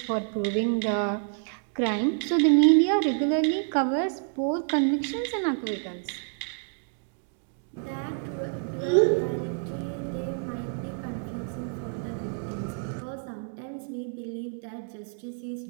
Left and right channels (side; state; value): left; silent; 59 dB below the other